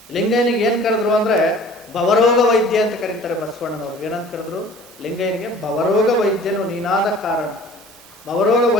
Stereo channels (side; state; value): both; normal; correlation 0.48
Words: ಲಿಂಗಯ್ಯನಿಗೆ ಏನು ಕರೆದ್ರು ಅಂದರೆ ಭವರೋಗ ವೈದ್ಯ ಅಂತ ಕರೀತಾರೆ ಬಸವಣ್ಣನವರು. ಏನಂತ ಕರೆದ್ರು? ಲಿಂಗಯ್ಯನಿಗೆ ಭವರೋಗ ವೈದ್ಯನು ನೀನಾದ ಕಾರಣ. ಭವರೋಗ